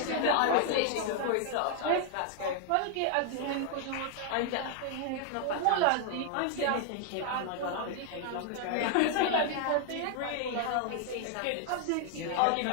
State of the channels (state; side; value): different; both; correlation 0.00